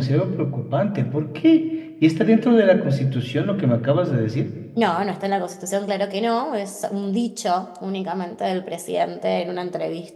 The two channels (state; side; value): identical; both; correlation 1.00